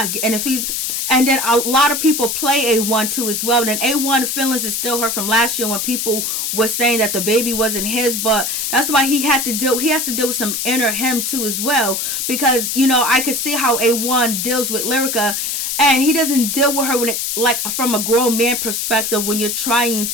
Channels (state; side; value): noise; left; hiss, 1 dB below the sound